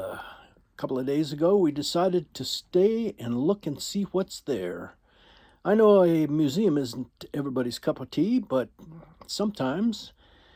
couple of days ago we decided to stay and look and see what's there. I know a museum isn't everybody's cup of tea, but sometimes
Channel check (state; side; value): identical; both; correlation 1.00